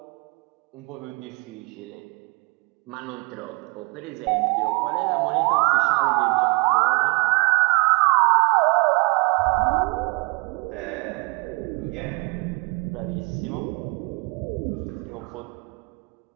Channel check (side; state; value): left; quieter; 30.3 dB